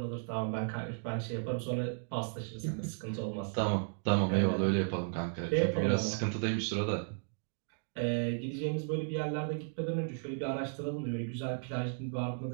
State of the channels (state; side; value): silent; left; digital silence